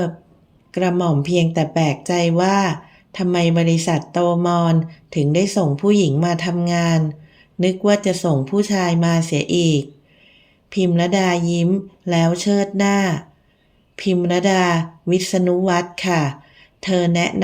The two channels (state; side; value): identical; both; correlation 1.00